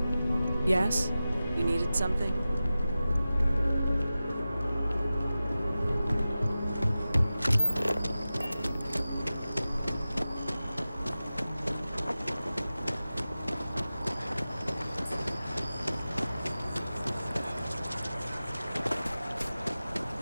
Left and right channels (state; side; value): inverted; both; correlation -0.95